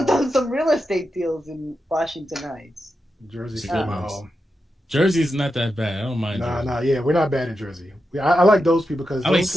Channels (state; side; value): normal; both; correlation 0.88